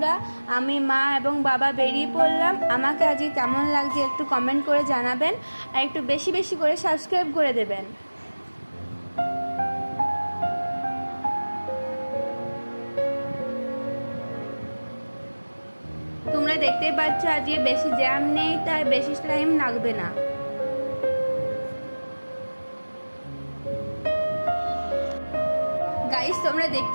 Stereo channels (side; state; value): both; inverted; correlation -1.00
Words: আমি মা এবং বাবা বেরিয়ে পড়লাম। আমাকে আজকে কেমন লাগছে একটু কমেন্ট করে জানাবেন, আর একটু বেশি বেশি করে সাবস্ক্রাইব করে দেবেন। তোমরা দেখতেই পাচ্ছ আজকে বেশি জ্যাম নেই, তাই বেশি টাইম লাগবে না। গাইস, তোমরা